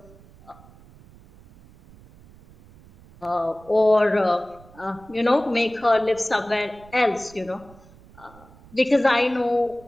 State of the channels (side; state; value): right; noise; rumble, 24 dB below the sound